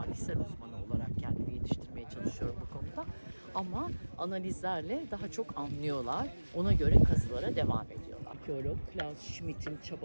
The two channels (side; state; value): both; inverted; correlation -1.00